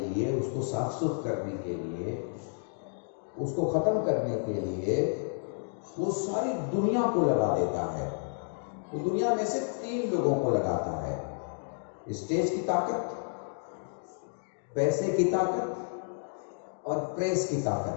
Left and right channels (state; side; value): silent; right; digital silence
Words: اس کو صاف ستھرا کرنے کے لیے، اس کو ختم کرنے کے لیے وہ ساری دنیا کو لگا دیتا ہے۔ وہ دنیا میں سے 3 لوگوں کو لگاتا ہے: اسٹیج کی طاقت، پیسے کی طاقت اور پریس کی